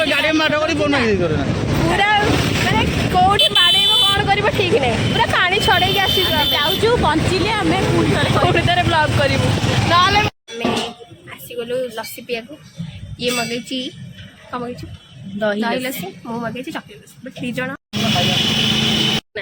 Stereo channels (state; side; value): identical; both; correlation 1.00